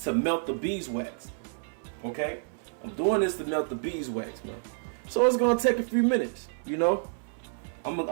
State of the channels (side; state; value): left; silent; 58 dB below the other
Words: melt the beeswax. Okay, I'm doing this to melt the beeswax, man. So it's gonna take a few minutes, you know. I'm